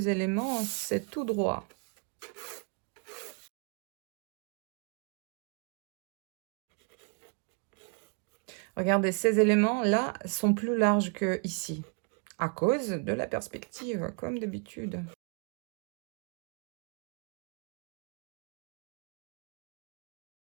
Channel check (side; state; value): left; quieter; 38.4 dB